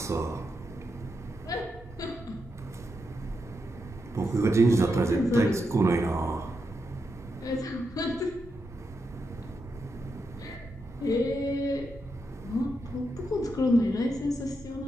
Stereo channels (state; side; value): normal; both; correlation 0.84